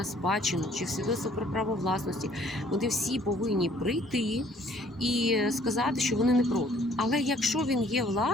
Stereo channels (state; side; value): normal; both; correlation 0.59